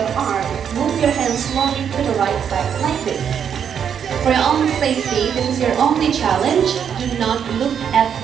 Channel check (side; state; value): left; quieter; 8.0 dB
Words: arm, move your hand slowly to the right side like this. For your own safety, this is your only challenge. Do not look at